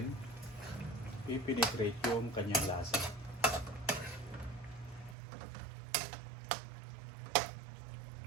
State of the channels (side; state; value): left; drops out; at 5.2 s